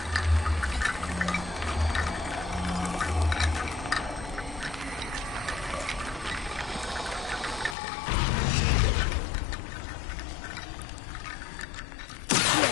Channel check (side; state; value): right; drops out; at 7.8 s